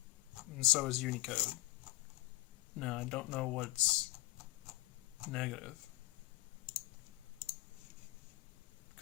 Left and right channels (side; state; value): right; quieter; 18.9 dB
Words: and so is Unicode. Now, I don't know what's negative.